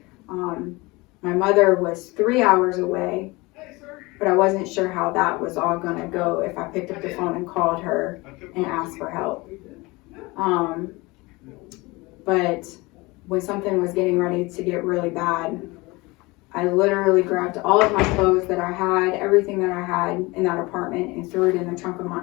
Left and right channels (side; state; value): right; quieter; 23.4 dB